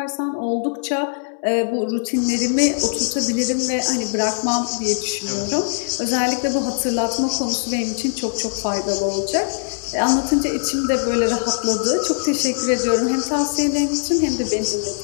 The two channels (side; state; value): right; silent; digital silence